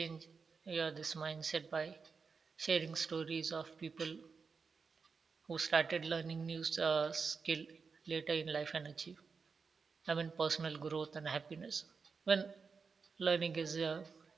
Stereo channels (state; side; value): quieter; left; 5.2 dB